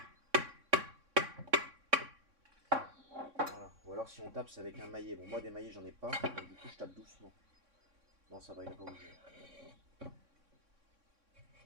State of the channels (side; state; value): left; late; 3.6 ms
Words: Ou alors si on tape c'est avec un maillet. Bon moi des maillets j'en ai pas, donc du coup je tape doucement. Non ça va, il n'a pas bougé.